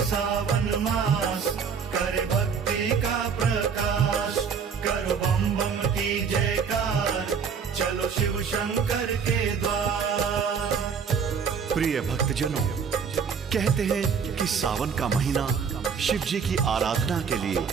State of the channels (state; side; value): quieter; left; 6.3 dB